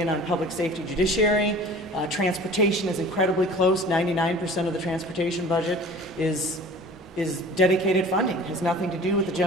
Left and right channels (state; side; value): normal; both; correlation 0.43